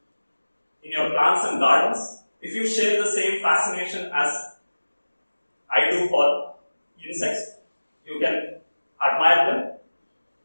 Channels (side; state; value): both; inverted; correlation -1.00